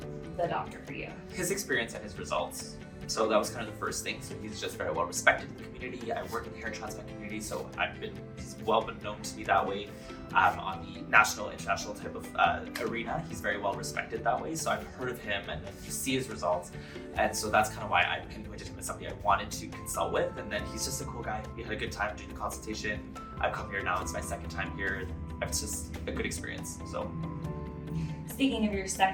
the doctor for you? His experience and his results. So that was kind of the first thing. So he's just very well respected in the community. I work in the hair transplant community, so he's well been known to me that way. On the national, international type of arena, he's very well respected that way. So I've heard of him and then you see his results. And so that's kind of why I pinpointed him as somebody I wanted to consult with. And then he's just a cool guy. We had a good time doing the consultation. I've come here now, it's my second time here. It's just a good experience, so. Speaking of your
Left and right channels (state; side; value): identical; both; correlation 1.00